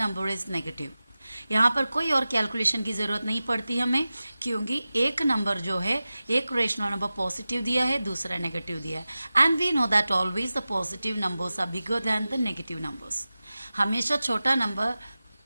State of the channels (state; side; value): inverted; both; correlation -0.96